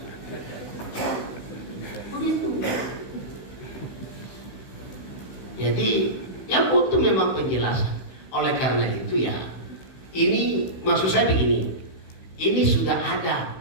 Jadi ya butuh memang penjelasan. Oleh karena itu ya, ini maksud saya begini. Ini sudah ada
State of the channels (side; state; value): right; late; 16 ms